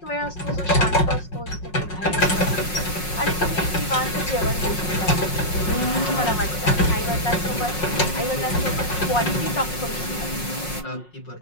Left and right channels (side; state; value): right; late; 5.5 ms